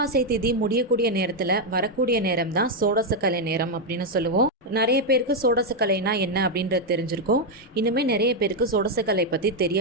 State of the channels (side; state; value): both; normal; correlation 0.02